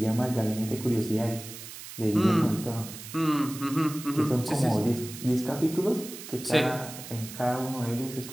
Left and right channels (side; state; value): right; noise; hiss, 13 dB below the sound